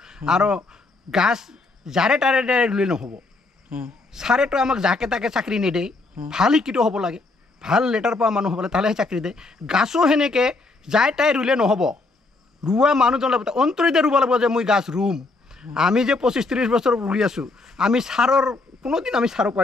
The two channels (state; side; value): quieter; right; 3.4 dB